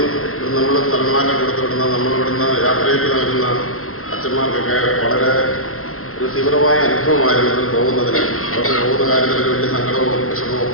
നമ്മൾ സ്ഥലമാറ്റം കൊടുത്തുവിടുന്ന, നമ്മളിവിടുന്ന് യാത്രയ്ക്ക് നൽകുന്ന അച്ഛന്മാർക്കൊക്കെ വളരെ ഒരു തീവ്രമായ അനുഭവമായിരുന്നു പോകുന്നതിന്. അവർക്ക് പോകുന്ന കാര്യത്തിൽ വലിയ സങ്കടവും വിഷമവും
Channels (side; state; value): right; late; 0.63 ms